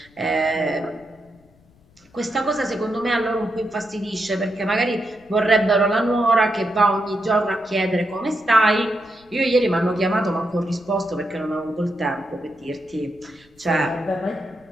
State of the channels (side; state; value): left; noise; rumble, 30 dB below the sound